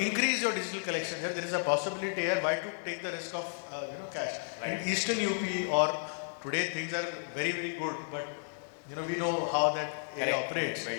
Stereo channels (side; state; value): right; silent; 56 dB below the other